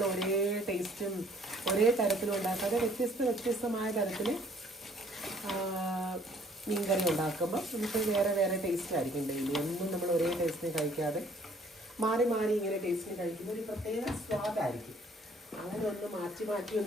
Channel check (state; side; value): normal; both; correlation 0.59